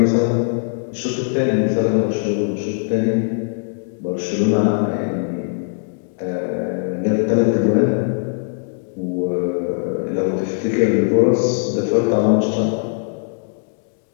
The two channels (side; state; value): right; silent; digital silence